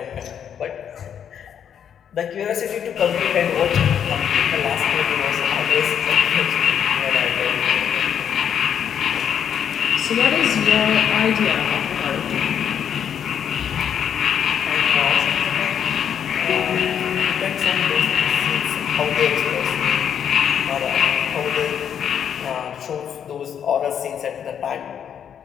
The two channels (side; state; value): right; quieter; 8.6 dB